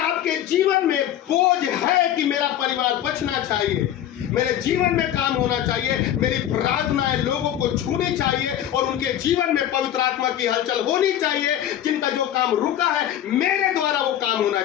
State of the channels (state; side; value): quieter; right; 11.3 dB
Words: जीवन में बोझ है कि मेरा परिवार बचना चाहिए, मेरे जीवन में काम होना चाहिए, मेरी प्रार्थनाएं लोगों को छूनी चाहिए और उनके जीवन में पवित्र आत्मा की हलचल होनी चाहिए, जिनका जो काम रुका है मेरे द्वारा वो काम होना